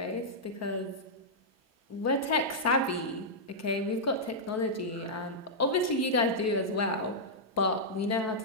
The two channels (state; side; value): normal; both; correlation -0.09